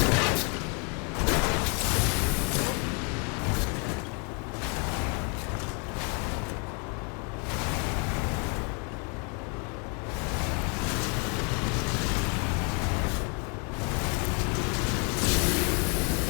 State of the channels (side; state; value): right; quieter; 36.0 dB